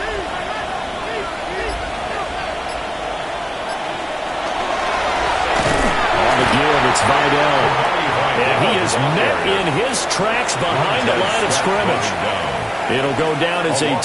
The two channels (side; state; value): both; identical; correlation 1.00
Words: It's Vidal. And he is met in his tracks behind the line of scrimmage. It'll go down as a